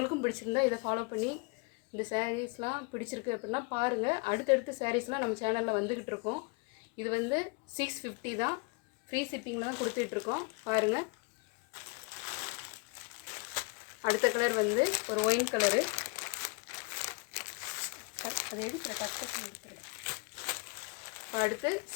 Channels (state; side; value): quieter; right; 31.7 dB